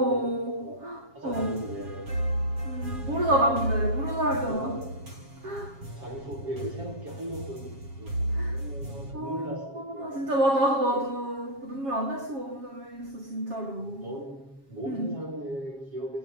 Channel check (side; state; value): left; late; 7.3 ms